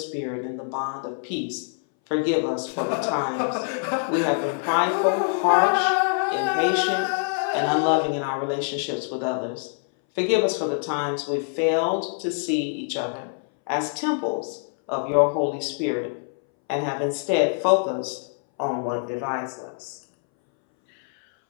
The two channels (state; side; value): silent; right; 62 dB below the other